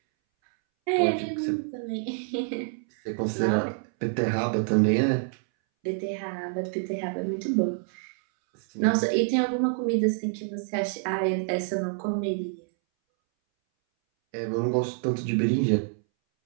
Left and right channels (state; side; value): silent; left; 60 dB below the other